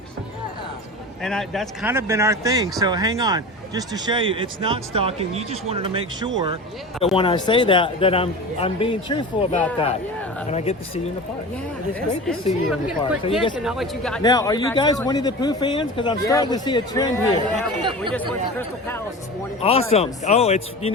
Yeah. And that's kind of been our thing. So hang on, just to show you, it's not stalking. You just wanted to make sure that when I say that I'm being truthful about that. Yeah. And I get to see you in the park. Yeah. It's great to see you in the park. So now, are you guys Winnie the Pooh fans? Because I'm starting to see a trend here. Yeah, we just went to Crystal Palace this morning. Awesome. Oh, it's you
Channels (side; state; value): both; normal; correlation 0.32